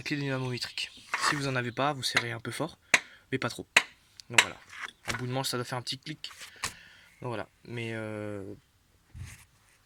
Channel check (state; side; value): identical; both; correlation 1.00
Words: clé dynamométrique. Si vous en avez pas, vous serrez un peu fort, mais pas trop. Donc voilà. Un bout de manche, ça doit faire un petit clic. Donc voilà. Mais